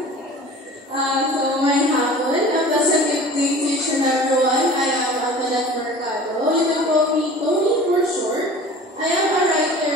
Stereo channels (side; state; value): both; normal; correlation 0.42